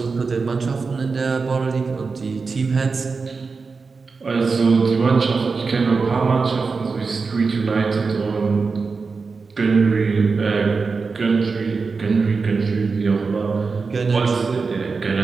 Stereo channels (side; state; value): left; quieter; 4.6 dB